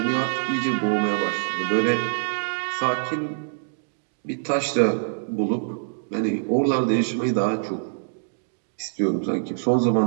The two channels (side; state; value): left; silent; digital silence